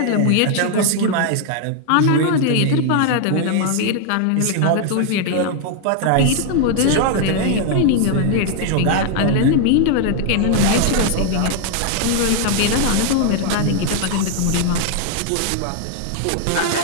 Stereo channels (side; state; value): both; different; correlation 0.00